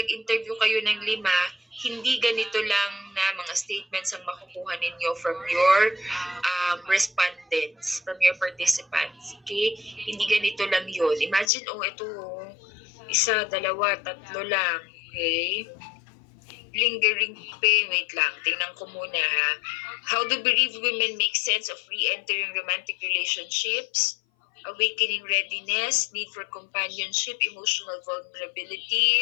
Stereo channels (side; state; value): right; drops out; at 11.5 s